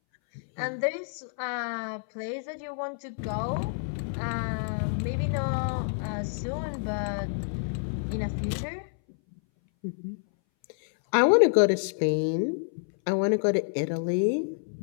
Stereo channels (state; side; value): silent; right; 59 dB below the other